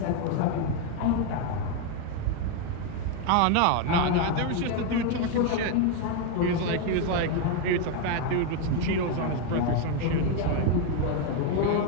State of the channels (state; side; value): different; both; correlation 0.01